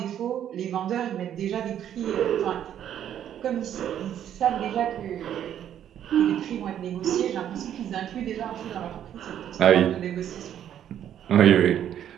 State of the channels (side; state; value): left; quieter; 10.2 dB